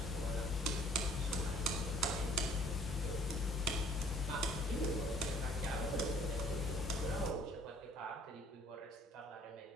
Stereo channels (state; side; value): normal; both; correlation 0.57